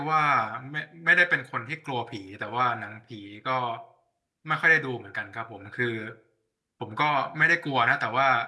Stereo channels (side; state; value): both; identical; correlation 1.00